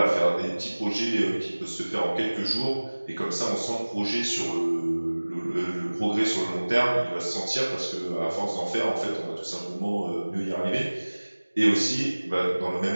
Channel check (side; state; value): both; inverted; correlation -1.00